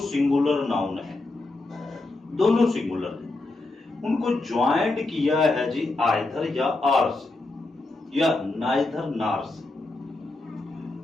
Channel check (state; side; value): quieter; right; 3.0 dB